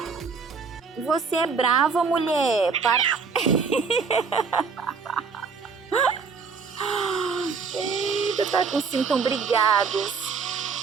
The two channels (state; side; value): quieter; left; 5.3 dB